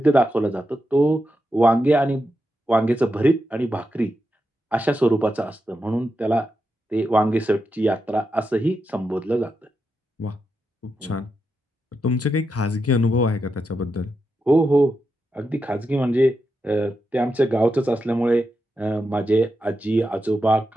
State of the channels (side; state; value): both; normal; correlation 0.87